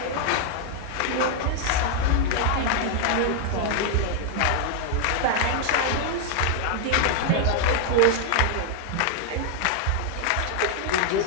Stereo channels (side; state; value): both; different; correlation 0.00